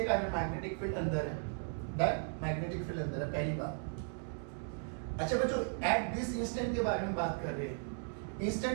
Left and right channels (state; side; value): silent; left; 53 dB below the other